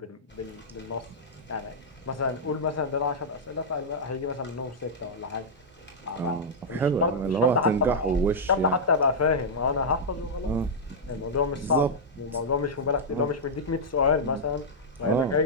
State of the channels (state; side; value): normal; both; correlation -0.07